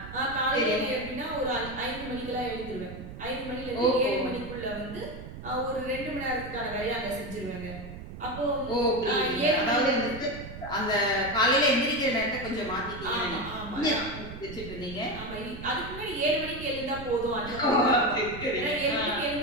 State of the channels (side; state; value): right; noise; rumble, 12 dB below the sound